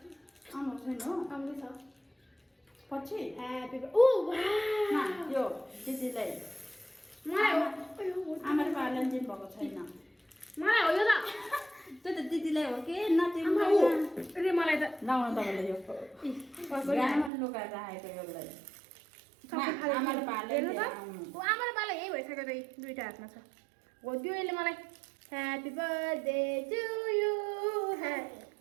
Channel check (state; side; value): drops out; left; at 17.3 s